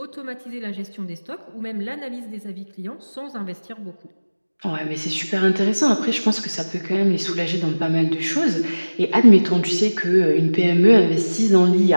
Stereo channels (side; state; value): both; inverted; correlation -1.00